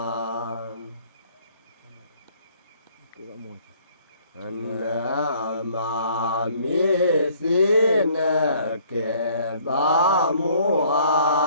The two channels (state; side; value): inverted; both; correlation -0.60